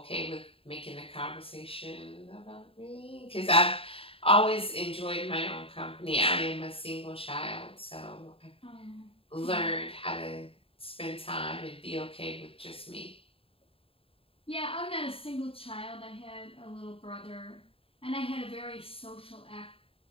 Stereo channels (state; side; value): late; right; 0.27 ms